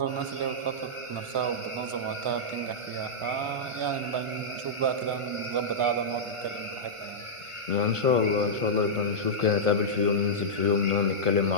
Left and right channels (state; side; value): late; left; 1.4 ms